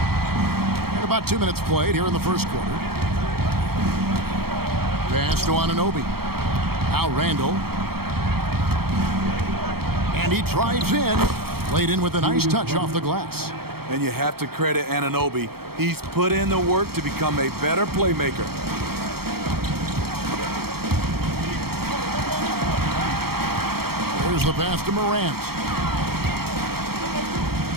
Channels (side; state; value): left; late; 0.95 ms